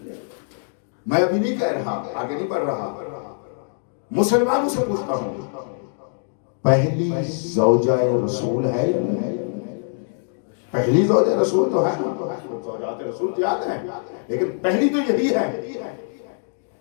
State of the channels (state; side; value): silent; right; 61 dB below the other